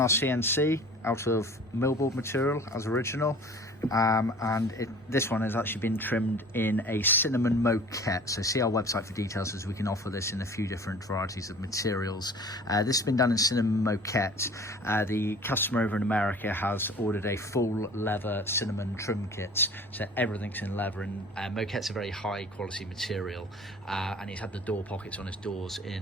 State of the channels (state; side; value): normal; both; correlation 0.44